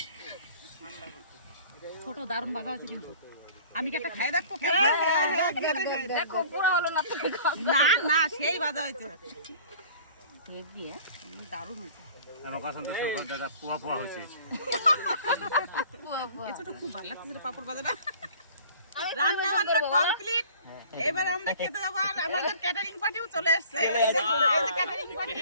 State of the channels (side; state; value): both; inverted; correlation -0.48